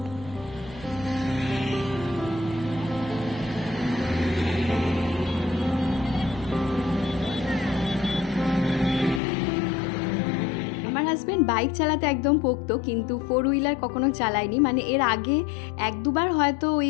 হাজবেন্ড বাইক চালাতে একদম পোক্ত, কিন্তু 4 হুইলার কখনো চালায়নি। মানে এর আগে 1-2বার হয়তো ওই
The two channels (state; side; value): drops out; right; at 9.2 s